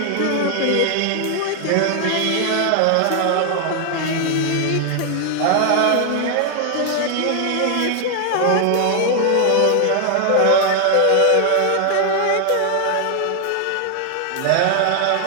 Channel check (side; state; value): both; different; correlation 0.00